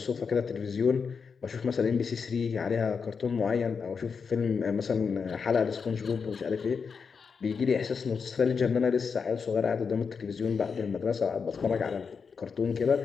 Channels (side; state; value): right; quieter; 5.7 dB